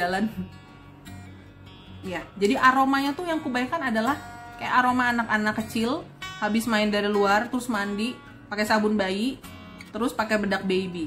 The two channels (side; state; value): both; identical; correlation 1.00